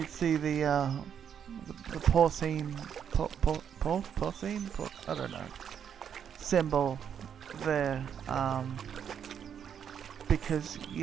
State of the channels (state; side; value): quieter; left; 8.2 dB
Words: see the porcine, porcine? I don't know. Symbol there. Because,